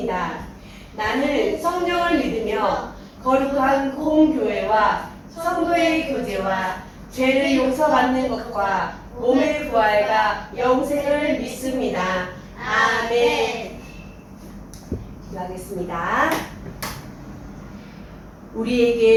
나는 성령을 믿으며 거룩한 공교회와 성도의 교제와 죄를 용서받는 것과 몸의 부활과 영생을 믿습니다. 아멘. 기도하겠습니다.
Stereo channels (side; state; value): both; identical; correlation 1.00